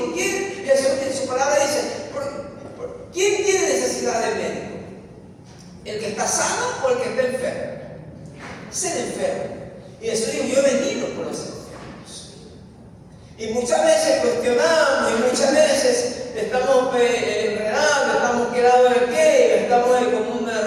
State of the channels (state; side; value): identical; both; correlation 1.00